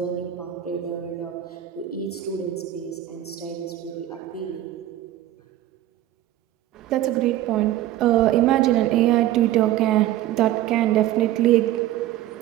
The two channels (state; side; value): quieter; left; 13.5 dB